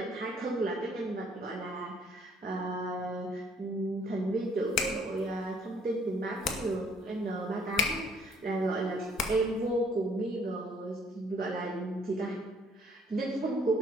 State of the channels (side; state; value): both; normal; correlation 0.62